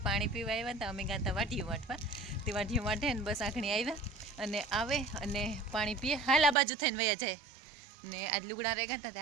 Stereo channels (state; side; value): drops out; left; at 6.6 s